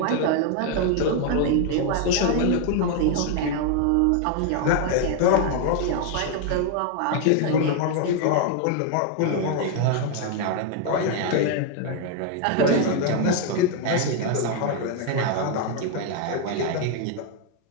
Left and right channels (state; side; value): different; both; correlation 0.00